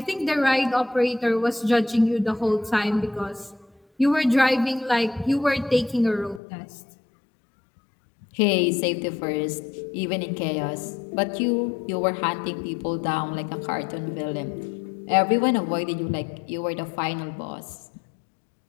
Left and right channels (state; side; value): drops out; right; at 6.4 s